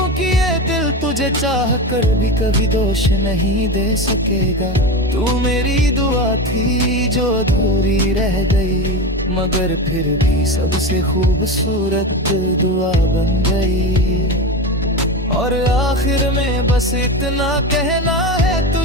ये दिल तुझे चाह कर भी कभी दोष नहीं दे सकेगा। तू मेरी दुआ थी जो अधूरी रह गई, मगर फिर भी सबसे खूबसूरत दुआ बन गई। और आखिर में बस इतना कहना है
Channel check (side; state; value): both; normal; correlation 0.22